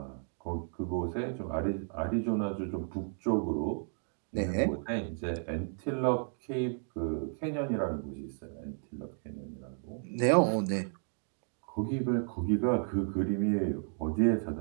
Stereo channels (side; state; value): left; silent; 56 dB below the other